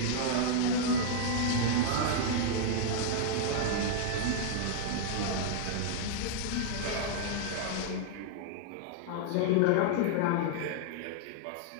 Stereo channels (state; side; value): different; both; correlation -0.01